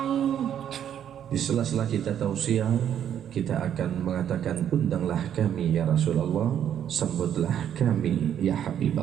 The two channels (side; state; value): left; quieter; 9.6 dB